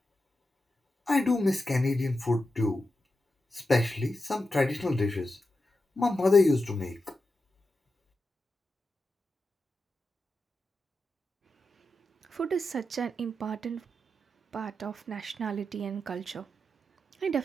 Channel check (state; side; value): normal; both; correlation 0.89